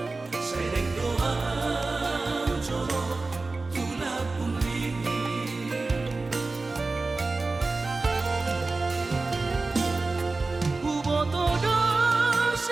sereng doa coro tulak pungli Ubotodo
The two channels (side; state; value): left; quieter; 3.6 dB